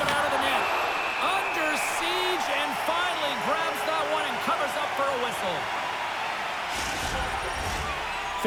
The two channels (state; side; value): identical; both; correlation 1.00